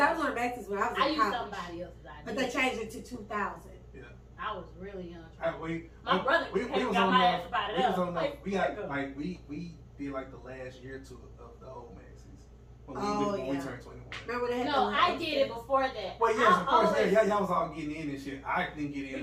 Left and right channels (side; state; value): both; identical; correlation 1.00